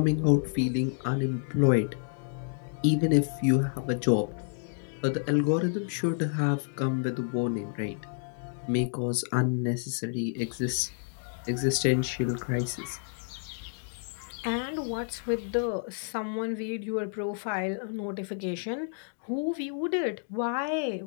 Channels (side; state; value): right; silent; digital silence